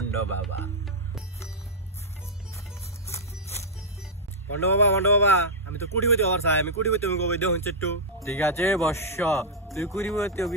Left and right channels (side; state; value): both; normal; correlation -0.07